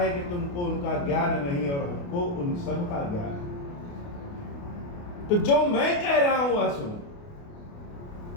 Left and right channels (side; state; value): right; late; 28 ms